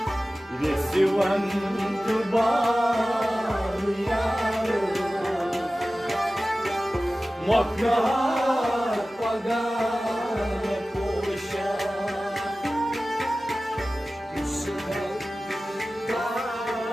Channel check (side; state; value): both; normal; correlation 0.96